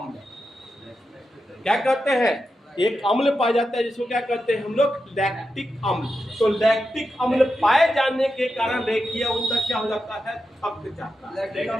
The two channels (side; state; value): both; normal; correlation 0.88